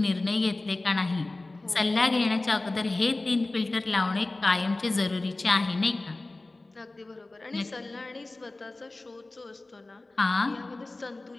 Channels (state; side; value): quieter; right; 3.0 dB